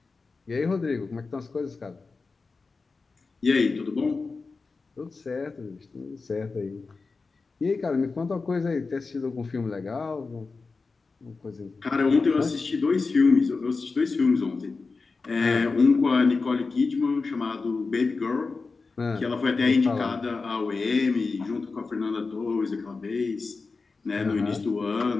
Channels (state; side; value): quieter; right; 4.2 dB